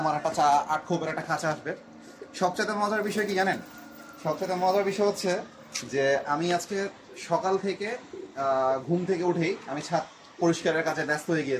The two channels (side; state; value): both; identical; correlation 1.00